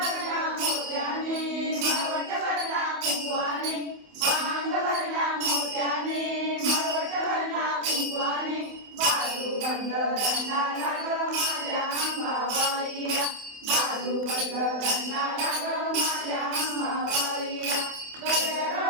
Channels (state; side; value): late; left; 28 ms